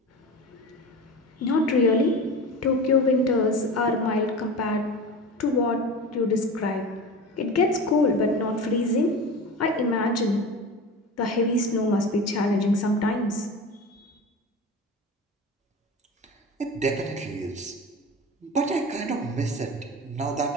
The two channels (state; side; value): normal; both; correlation 0.31